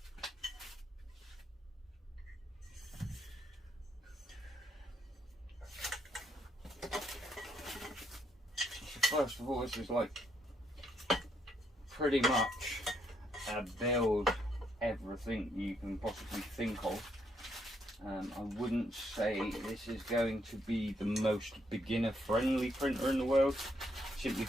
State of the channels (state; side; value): normal; both; correlation 0.75